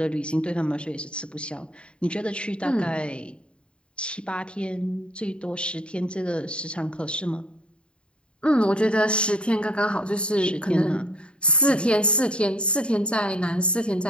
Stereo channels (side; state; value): right; late; 0.055 ms